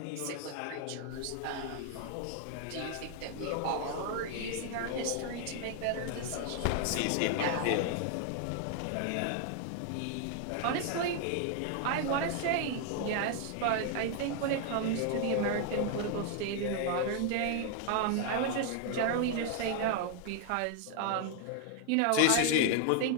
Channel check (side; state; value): both; different; correlation 0.00